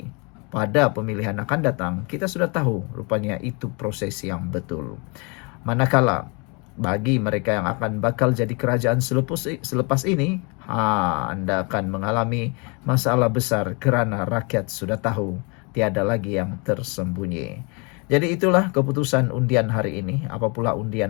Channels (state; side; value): quieter; right; 31.7 dB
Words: pada pemilihan akan datang kita sudah tahu rupanya itu proses yang betul. Manakala bagi mereka yang akan bakal jadi kerajaan selepas ini, anda akan mengalami masalah besar kerana rakyat sudah tahu tiada lagi yang tersembunyi. Jadi itulah keputusan undian hari ini. Apa pula